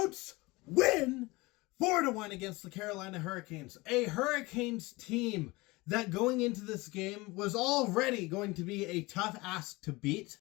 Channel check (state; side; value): quieter; right; 22.8 dB